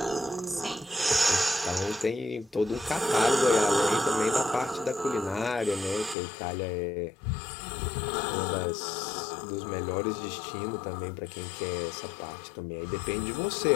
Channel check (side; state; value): right; drops out; at 6.2 s